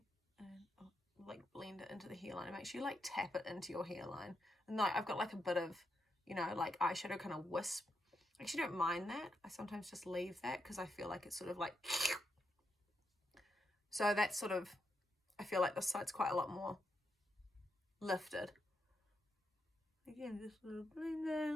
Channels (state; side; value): normal; both; correlation 0.83